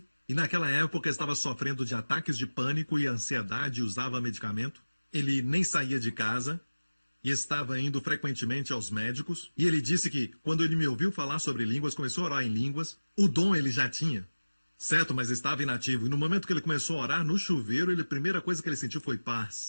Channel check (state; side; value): inverted; both; correlation -1.00